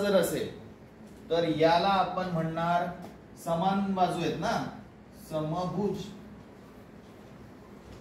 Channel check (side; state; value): both; identical; correlation 1.00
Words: असेल तर याला आपण म्हणणार समान बाजू आहेत ना, समभुज,